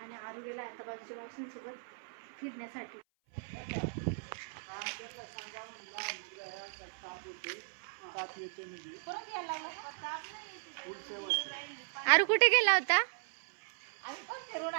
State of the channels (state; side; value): silent; left; 53 dB below the other